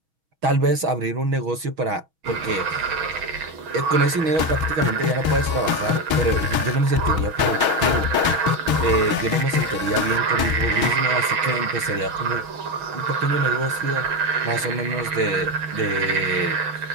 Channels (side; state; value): left; late; 6.2 ms